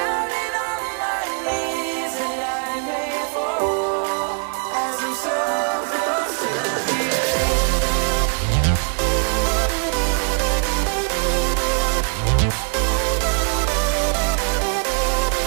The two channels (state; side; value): quieter; left; 38.0 dB